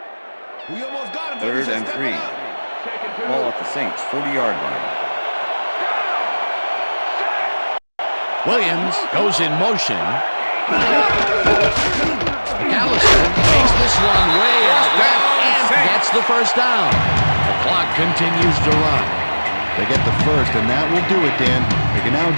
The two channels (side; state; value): both; inverted; correlation -1.00